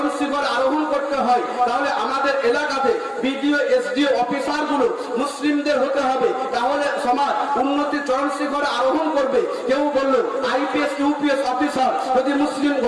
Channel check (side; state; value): both; identical; correlation 1.00